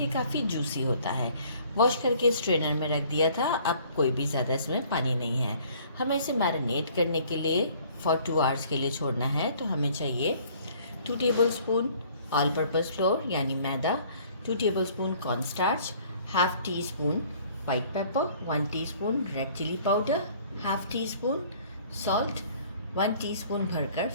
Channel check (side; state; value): both; inverted; correlation -0.56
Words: काफ़ी जूसी होता है। वॉश करके स्ट्रेनर में रख दिया था। अब कोई भी ज़्यादा इसमें पानी नहीं है। हमें इसे मैरिनेट करने के लिए फॉर 2 आवर्स के लिए छोड़ना है। तो हमें चाहिए 2 टेबलस्पून ऑल पर्पस फ्लोर यानी मैदा, 2 tablespoon cornstarch, half teaspoon white pepper, 1 teaspoon red chilli powder, half teaspoon salt, 1 teaspoon भरकर